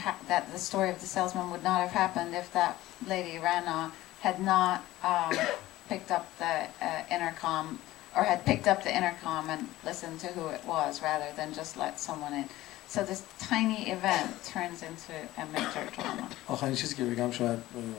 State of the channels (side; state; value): right; quieter; 16.5 dB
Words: that the story of the salesman would not have happened if that lady Rana had not picked up the intercom or had picked up the intercom and listened to who it was rather than just let someone in. So this tiny event turns into a major drama. آخرین چیزی که بگم شاید